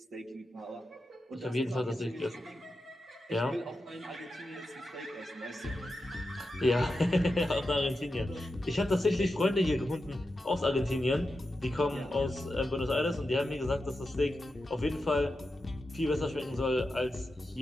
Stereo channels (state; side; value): normal; both; correlation 0.90